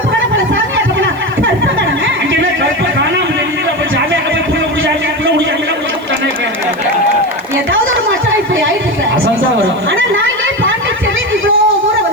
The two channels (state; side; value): noise; right; hiss, 27 dB below the sound